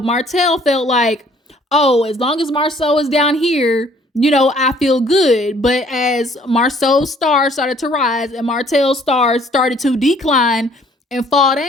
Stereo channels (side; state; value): both; normal; correlation 0.59